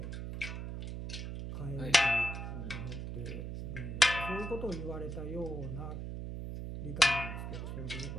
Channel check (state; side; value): noise; right; hum, 5 dB below the sound